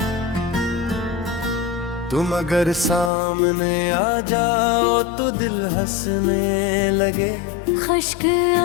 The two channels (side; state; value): right; drops out; at 3.1 s